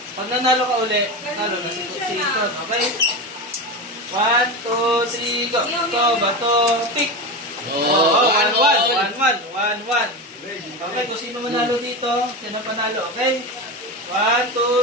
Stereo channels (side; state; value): both; normal; correlation 0.21